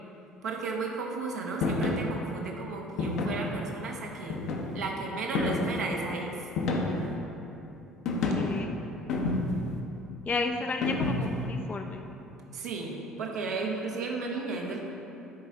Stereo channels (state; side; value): normal; both; correlation 0.46